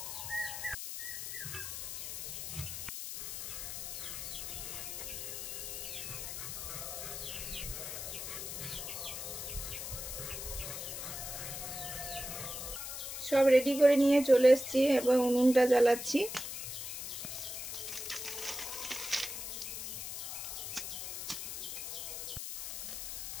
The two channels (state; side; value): noise; left; hiss, 6 dB below the sound